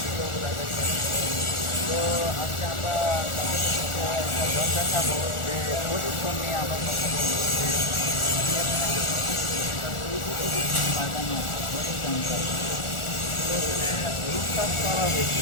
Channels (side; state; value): right; late; 1.4 ms